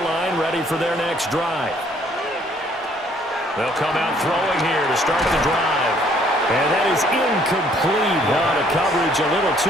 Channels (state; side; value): normal; both; correlation 0.62